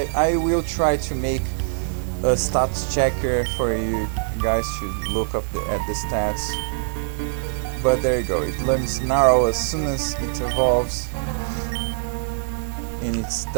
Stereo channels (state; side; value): silent; left; digital silence